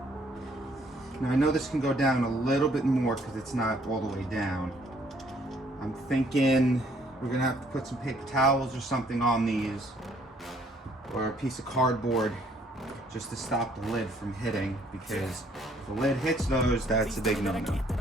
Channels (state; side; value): normal; both; correlation 0.64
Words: Now I know this can go down a little bit more because it's not all the way down. I'm thinking we're gonna have to put some paper towels or something on these, or a piece of cardboard, just to stop the lid from hitting, because if the lid hits those, that's a big no-no.